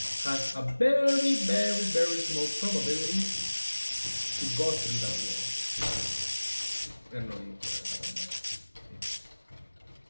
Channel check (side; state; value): both; inverted; correlation -1.00